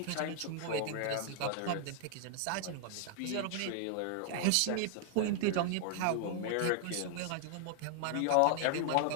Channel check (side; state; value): both; different; correlation 0.00